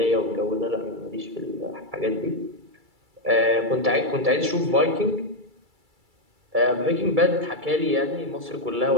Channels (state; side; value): late; left; 2.3 ms